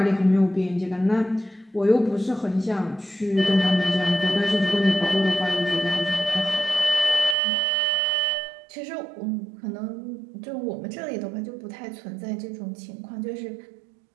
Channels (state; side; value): drops out; left; at 7.4 s